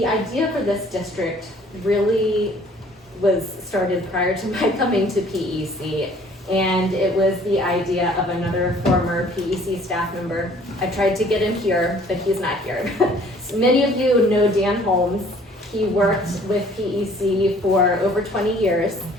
idea for this district really was started prior to my coming to PEC, and it was the idea of another former PEC staff member. I tried to get him here, but he's not here. So many of you know Dan Holmes. He worked with PEC for over 20 years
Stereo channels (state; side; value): normal; both; correlation 0.56